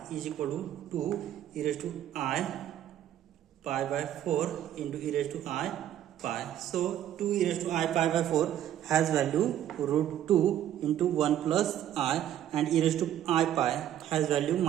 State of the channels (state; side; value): quieter; left; 11.4 dB